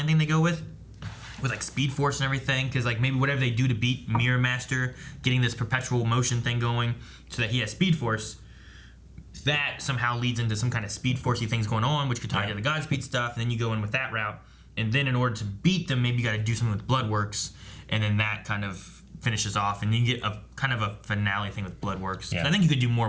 thing they go with like Speed Force and everything, because like maybe whatever they do to beat Mirror Master, getting this perpetual motion thing going so that he has Speed Force, that somehow leads into some kind of Speed Force-y things going on, which could tie into the Godspeed stuff, and then you go in with that route, and then in order to beat them, maybe you got to do something with Bloodworks, and then that kind of finishes off, and you get a kind of a finale thing with Bloodworks. So I think you could do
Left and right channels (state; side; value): identical; both; correlation 1.00